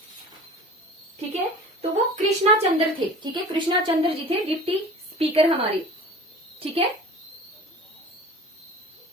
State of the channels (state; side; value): normal; both; correlation 0.40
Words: ठीक है, तो वो कृष्णा चंद्र थे। ठीक है, कृष्णा चंद्र जी थे डिप्टी स्पीकर हमारे। ठीक है,